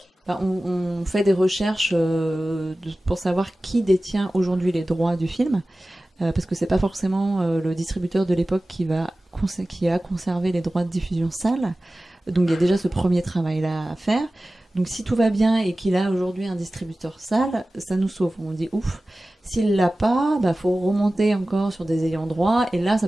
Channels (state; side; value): normal; both; correlation 0.96